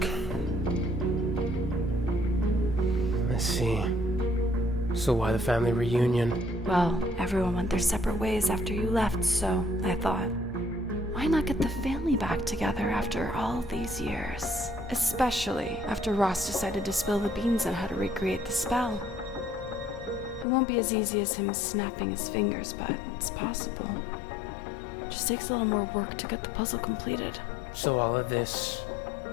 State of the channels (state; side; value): drops out; right; at 20.5 s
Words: I see. So why the family reunion? Well, everyone went their separate ways after you left, so I thought, why not get the family back together after all these years? Especially after Ross decided to spill the beans on how to recreate the spell. It won't be as easy as him snapping his fingers, but it's possible. Just takes a little more work to get the puzzle completed. So all of this,